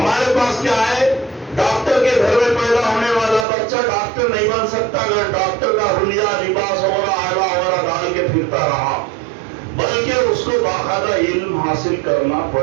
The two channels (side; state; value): left; drops out; at 3.5 s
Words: پاس کیا ہے, ڈاکٹر کے گھر میں پیدا ہونے والا بچہ ڈاکٹر نہیں بن سکتا اگر ڈاکٹر کا حلیہ, لباس وغیرہ آئلہ وغیرہ ڈال کے پھرتا رہا, بلکہ اس کو باقاعدہ علم حاصل کرنا